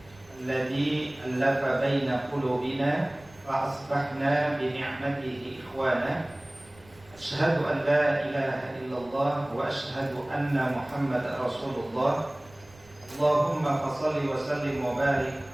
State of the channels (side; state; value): right; noise; rumble, 25 dB below the sound